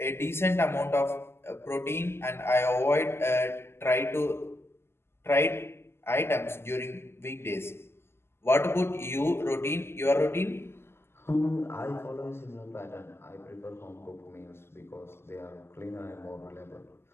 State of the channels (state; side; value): late; right; 0.12 ms